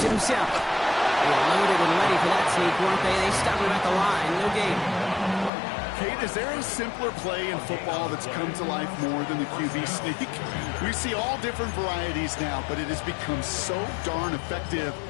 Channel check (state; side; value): drops out; right; at 5.5 s